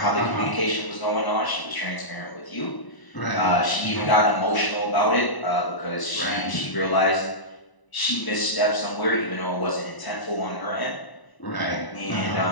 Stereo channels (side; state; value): right; late; 1.0 ms